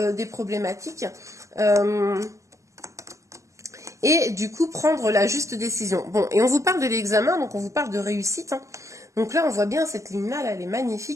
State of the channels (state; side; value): late; left; 0.15 ms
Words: des problématiques. Et du coup, prendre la juste décision. Bon, et on vous parle de l'examen, donc on vous parle de réussite, hein. Donc là, on voit bien cette ligne-là, là, elle est